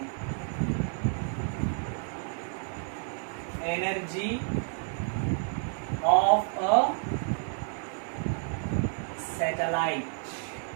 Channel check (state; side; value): silent; left; 55 dB below the other